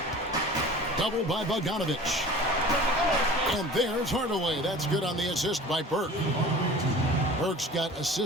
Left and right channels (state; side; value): normal; both; correlation 0.41